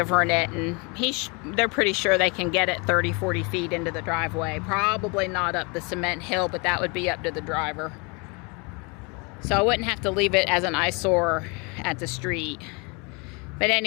it, and they're pretty sure they can get it 30, 40 feet into the driveway. Probably not up the cement hill, but that would be up to the driver. So I wouldn't have to leave it as an eyesore at the street. But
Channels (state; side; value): quieter; right; 30.6 dB